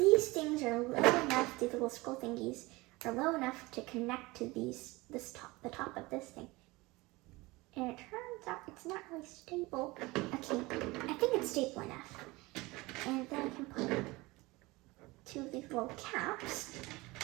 things are low enough, these little scroll thingies are low enough to connect to the top of this thing. And it turns out it's not really stable. Okay, I think it's stable enough. And then I can put two of these little caps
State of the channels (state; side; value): quieter; left; 22.2 dB